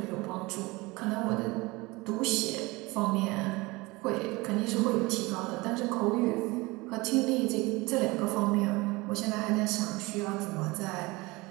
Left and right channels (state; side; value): quieter; left; 23.1 dB